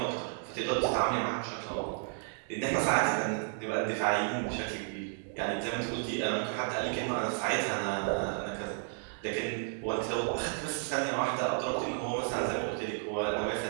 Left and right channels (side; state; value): left; silent; 56 dB below the other